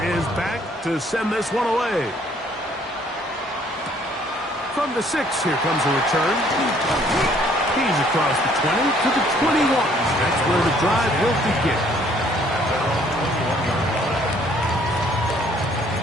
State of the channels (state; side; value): normal; both; correlation 0.62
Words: is back to send this one away. From the 6, here comes a return. He's across the 20 to the 21. That's where the drive will begin.